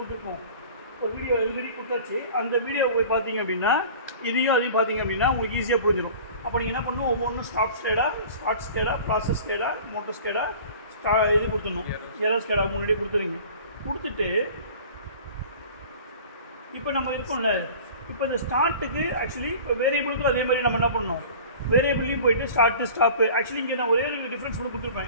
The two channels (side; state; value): both; inverted; correlation -0.43